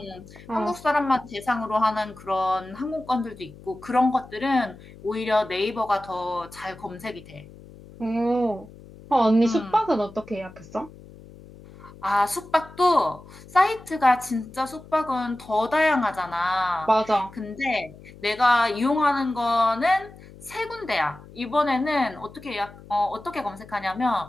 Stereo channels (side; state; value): left; noise; hum, 20 dB below the sound